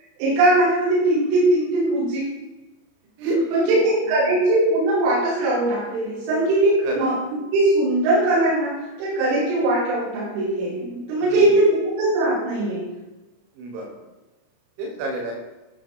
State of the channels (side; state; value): left; late; 33 ms